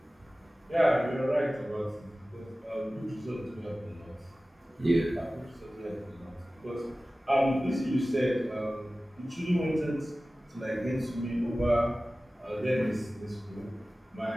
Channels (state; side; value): normal; both; correlation 0.97